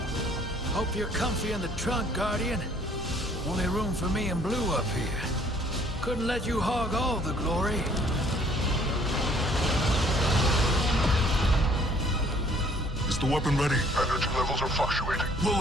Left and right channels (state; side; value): normal; both; correlation 0.59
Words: Hope you're comfy in the trunk, Guardian. Only room for me and Blue up here. Couldn't let you hog all the glory. Is the weapon ready? Energy levels are fluctuating. Will